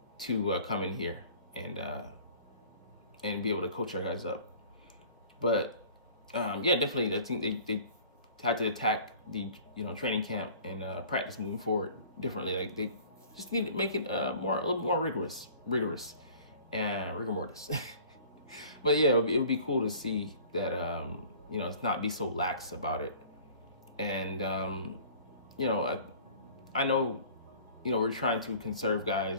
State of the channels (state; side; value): inverted; both; correlation -0.48